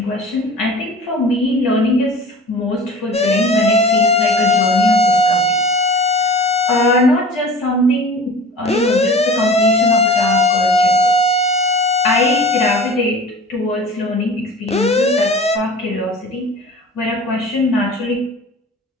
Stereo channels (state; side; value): normal; both; correlation 0.40